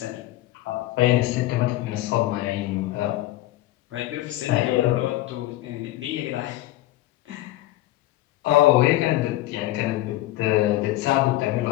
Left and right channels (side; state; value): right; quieter; 16.3 dB